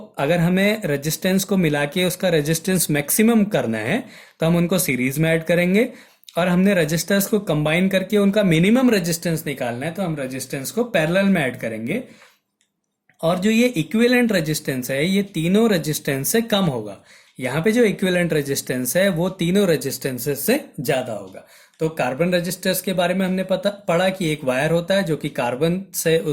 अगर हमें रेजिस्टेंस को मिला के उसका रेजिस्टेंस मैक्सिमम करना है तो हम उनको सीरीज में ऐड करेंगे, और हमने रेजिस्टर्स को कंबाइन करके उनका मिनिमम रेजिस्टेंस निकालना है तो हम रेजिस्टेंस को पैरेलल में ऐड करेंगे। और जो ये इक्विवेलेंट रेजिस्टेंस है ये तीनों रेजिस्टेंस से कम होगा। यहाँ पे जो इक्विवेलेंट रेजिस्टेंस है वो तीनों रेजिस्टेंसेस से ज्यादा होगा। तो कार्बन रेजिस्टर्स के बारे में हमने पढ़ा कि एक वायर होता है जो कि कार्बन से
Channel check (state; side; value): identical; both; correlation 1.00